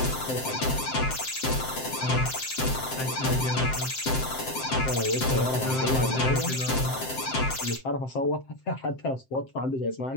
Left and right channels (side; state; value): right; late; 7.7 ms